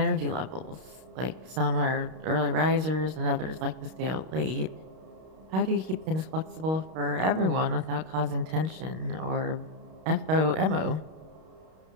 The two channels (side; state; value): left; late; 32 ms